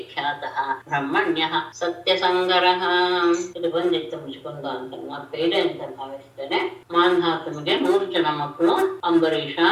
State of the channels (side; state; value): both; identical; correlation 1.00